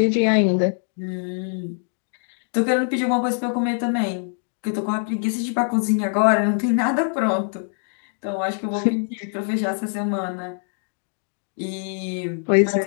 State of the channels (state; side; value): silent; right; 63 dB below the other